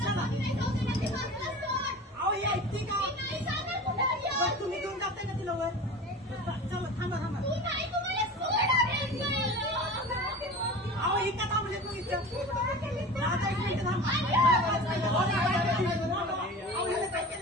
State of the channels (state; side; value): normal; both; correlation 0.35